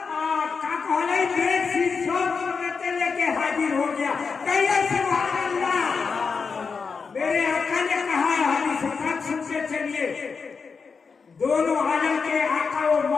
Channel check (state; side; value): quieter; right; 5.2 dB